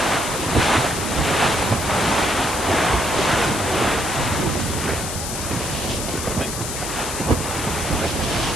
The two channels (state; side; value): noise; left; hiss, 5 dB below the sound